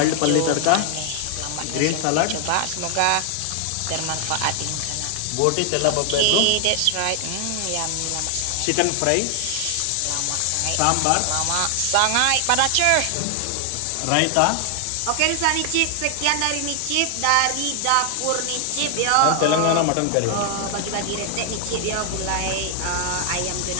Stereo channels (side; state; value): both; different; correlation 0.00